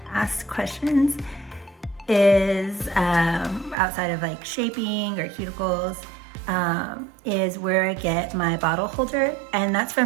questions is, outside of like shaping or cuticles, is where I get my bottle holder, and that's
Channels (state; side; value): drops out; left; at 3.8 s